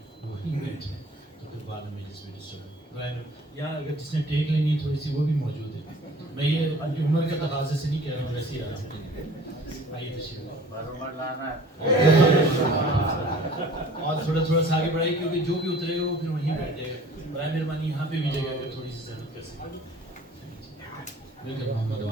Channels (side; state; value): both; normal; correlation 0.48